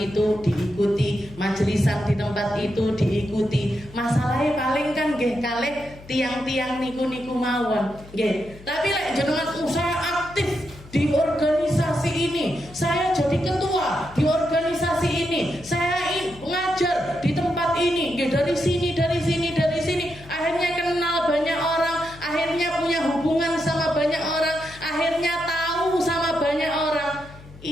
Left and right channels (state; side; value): noise; left; hum, 20 dB below the sound